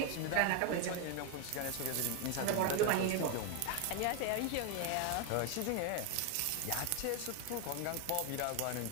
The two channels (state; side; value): different; both; correlation 0.01